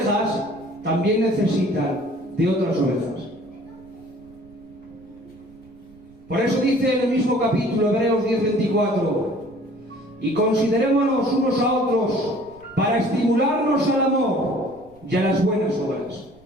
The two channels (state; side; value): noise; right; rumble, 26 dB below the sound